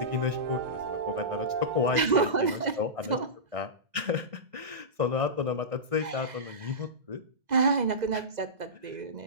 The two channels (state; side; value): late; left; 2.0 ms